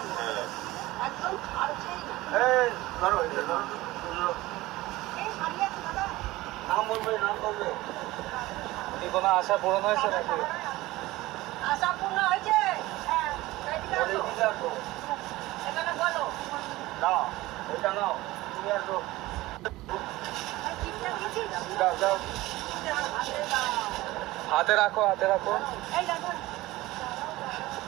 এই ধরো, এটা ধরো। নাম বলবে, নাম বলবে। কি কোনো আশা পূরণ হয়েছে নাকি? আশা পূর্ণ হয়েছে। হ্যাঁ, এদিকে বলে আসো। দিতে আসো। এখানে বলো। নাও, এটা নাও, তুমি আসো। এই চিঠিটা দিয়েছিস? দাও দাও, হাতে দাও। হাতে রাখো, হাতে রাখো। এই দেখো।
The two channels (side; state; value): left; quieter; 18.5 dB